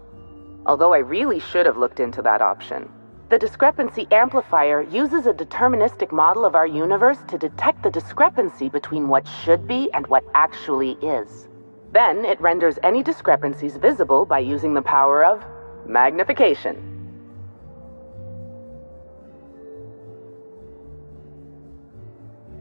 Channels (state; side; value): inverted; both; correlation -1.00